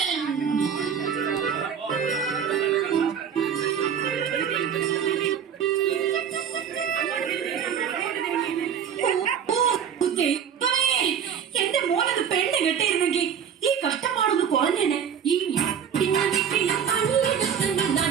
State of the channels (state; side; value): quieter; left; 8.0 dB